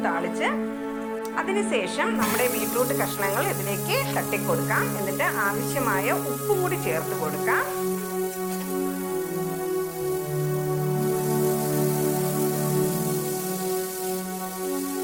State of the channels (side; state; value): both; identical; correlation 1.00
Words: താളിച്ച് അതിനുശേഷം നമ്മുടെ ബീറ്റ്റൂട്ട് കഷ്ണങ്ങൾ ഇതിലേക്ക് തട്ടിക്കൊടുക്കാം. എന്നിട്ട് ആവശ്യമായ ഉപ്പും കൂടി ചേർത്ത് കൊടുക്കാം.